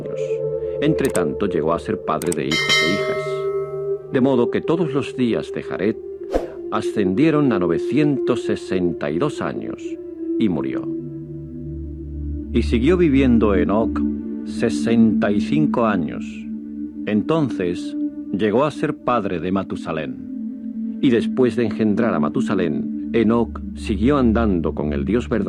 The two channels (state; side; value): identical; both; correlation 1.00